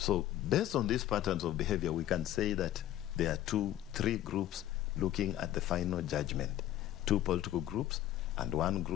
based on these patterns of behavior, we can say that there are 3 groups looking at the final judgment. 2 political groups and 1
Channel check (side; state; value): right; quieter; 13.0 dB